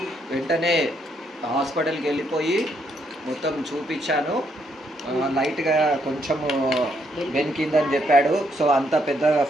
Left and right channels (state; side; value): normal; both; correlation 0.74